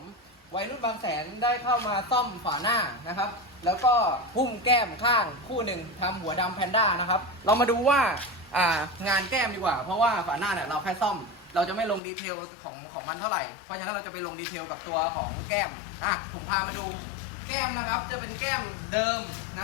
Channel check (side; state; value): right; drops out; at 12.0 s